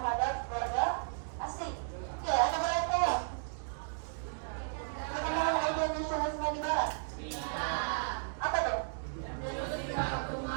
warga asing. Oke, ada berapa perkembangan ide nasionalisme di Barat? Apa tuh?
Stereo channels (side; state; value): left; silent; digital silence